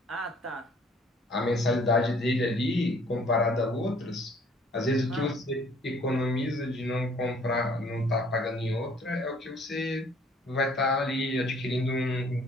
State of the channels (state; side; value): normal; both; correlation 0.58